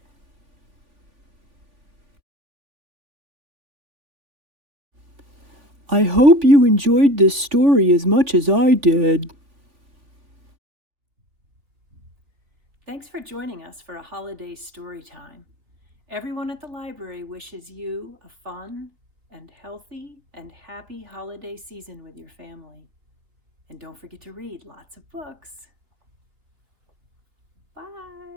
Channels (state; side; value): late; left; 3.5 ms